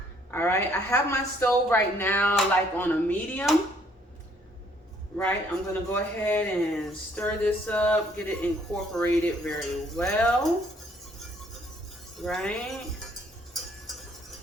All right, I have my stove right now like on a medium, right? I'm gonna go ahead and stir this up, get it incorporated very well, right?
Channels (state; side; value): normal; both; correlation 0.64